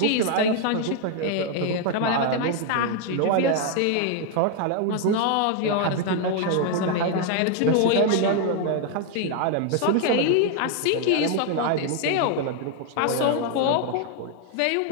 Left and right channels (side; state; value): both; different; correlation 0.00